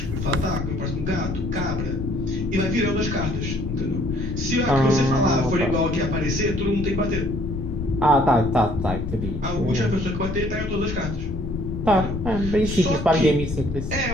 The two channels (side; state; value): left; noise; rumble, 6 dB below the sound